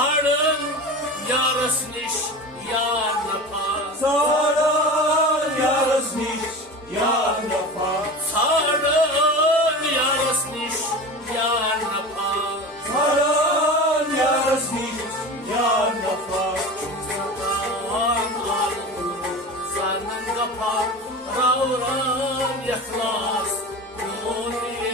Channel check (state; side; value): normal; both; correlation 0.31